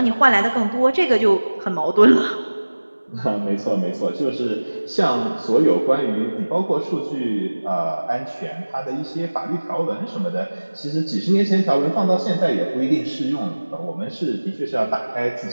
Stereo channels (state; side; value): inverted; both; correlation -1.00